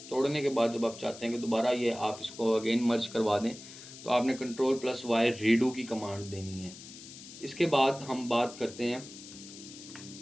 तोड़ने के बाद जब आप चाहते हैं कि दोबारा ये आप इसको अगेन मर्ज करवा दें तो आपने Ctrl plus Y रीडू की कमांड देनी है। इसके बाद हम बात करते हैं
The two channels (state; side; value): noise; left; hiss, 15 dB below the sound